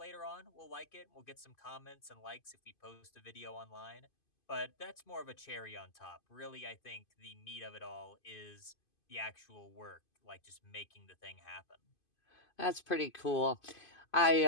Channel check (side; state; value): right; late; 2.5 ms